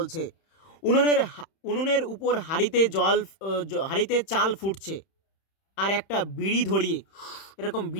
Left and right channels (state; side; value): late; right; 31 ms